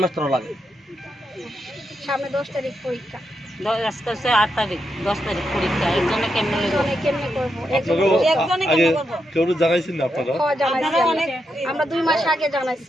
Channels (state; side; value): normal; both; correlation 0.83